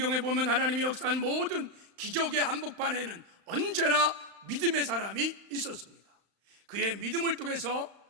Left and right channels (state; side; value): late; left; 35 ms